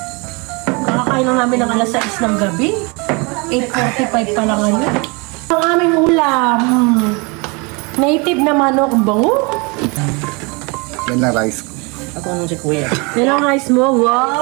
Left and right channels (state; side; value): quieter; left; 29.5 dB